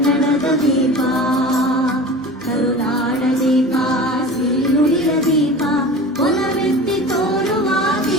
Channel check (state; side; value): normal; both; correlation 0.35